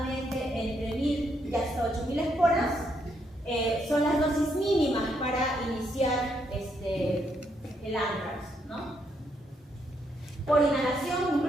entre 1000 y hasta 8000 esporas son las dosis mínimas para iniciar el anthrax, ¿no? Por inhalación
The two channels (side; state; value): both; normal; correlation 0.76